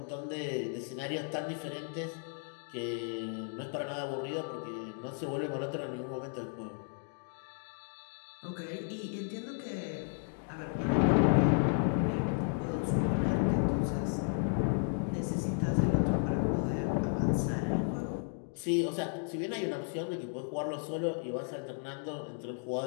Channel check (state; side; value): silent; right; 55 dB below the other